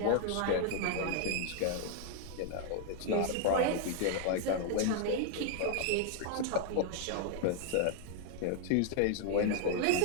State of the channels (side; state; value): both; different; correlation 0.00